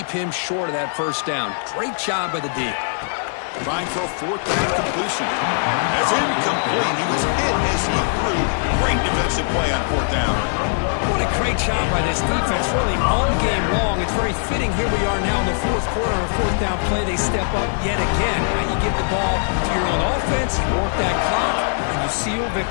him short of that 1st down? Great job by the D. Trying for a 4th down completion. That's incomplete. He was hit as he threw. Great defensive play on 4th down. What a great job by this defense, really all game long. It's very fitting. Here we are now in the 4th quarter on a 4th down play. They step up yet again. Now you give the ball to your own offense, you work that clock, and you seal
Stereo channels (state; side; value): silent; right; digital silence